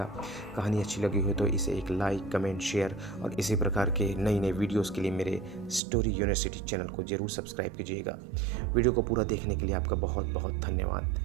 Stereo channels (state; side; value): drops out; left; at 5.8 s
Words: कहानी अच्छी लगी हो तो इसे एक लाइक, कमेंट, शेयर और इसी प्रकार के नई नई वीडियोस के लिए मेरे स्टोरी यूनिवर्सिटी चैनल को ज़रूर सब्सक्राइब कीजिएगा। वीडियो को पूरा देखने के लिए आपका बहुत बहुत धन्यवाद।